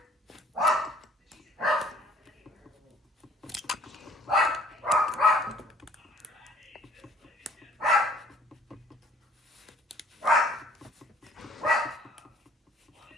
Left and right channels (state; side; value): normal; both; correlation 0.57